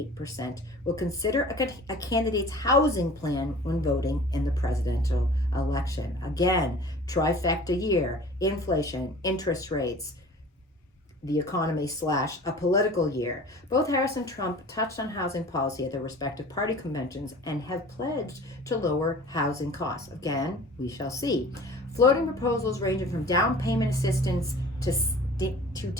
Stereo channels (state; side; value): normal; both; correlation 0.43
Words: will consider a candidate's housing plan when voting in the presidential election. Again, trifecta year: inflation, interest rates, the economy / a political year. Both Harris and Trump touched on housing policy at their respective party conventions and have pledged to lower housing costs. Again, we shall see. Floating proposals ranging from down payment assistance to